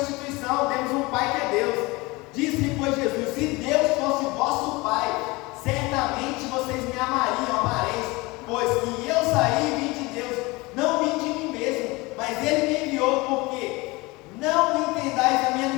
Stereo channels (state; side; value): quieter; right; 23.5 dB